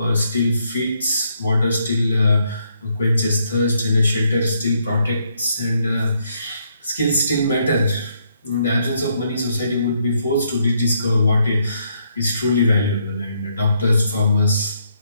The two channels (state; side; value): inverted; both; correlation -0.74